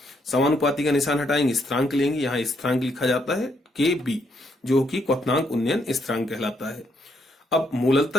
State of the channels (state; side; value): normal; both; correlation 0.74